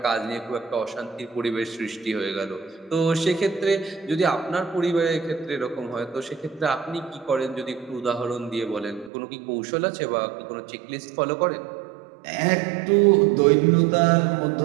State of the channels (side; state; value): left; drops out; at 9.1 s